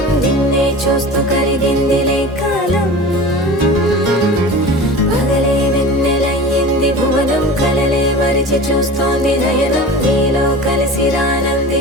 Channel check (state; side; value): normal; both; correlation 0.35